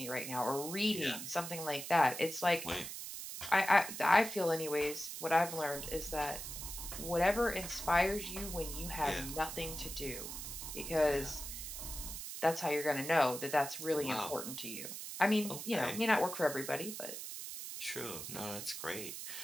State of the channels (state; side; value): noise; right; hiss, 8 dB below the sound